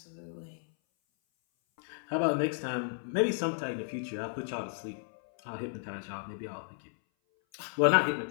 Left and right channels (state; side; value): silent; right; 56 dB below the other